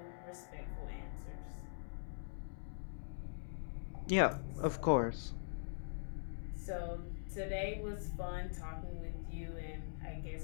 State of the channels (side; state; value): right; silent; digital silence